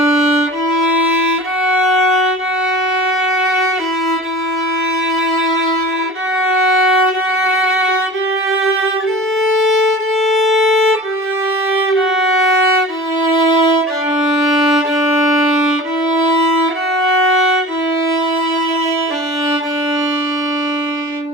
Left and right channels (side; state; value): both; normal; correlation 0.39